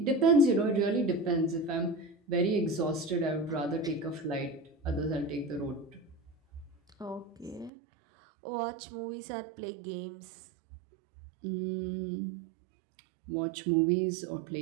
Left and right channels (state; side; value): drops out; left; at 7.7 s